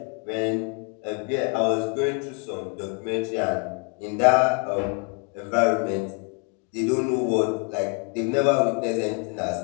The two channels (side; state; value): right; quieter; 33.8 dB